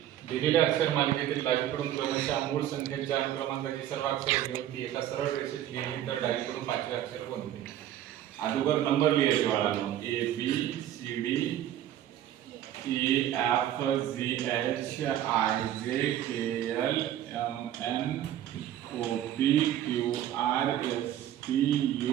दिलेल्या अक्षर मालिकेतील डावीकडून क्रमशः मूळ संख्येच्या अनुक्रमांकाची सर्व अक्षरे घेऊन ती एका सरळ रेषेत लिहिली तर डावीकडून पाचवे अक्षर कोणते? अगोदर नंबर लिहायचे बाळांनो. A B C D E F G H I J K L M N O P Q R S T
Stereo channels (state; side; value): quieter; left; 11.8 dB